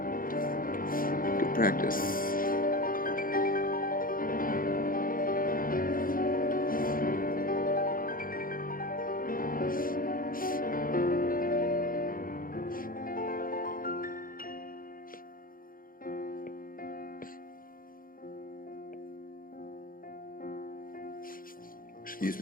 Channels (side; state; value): right; late; 0.41 ms